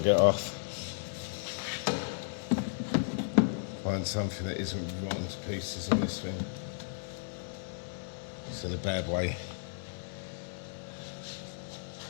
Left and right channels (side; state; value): right; silent; 55 dB below the other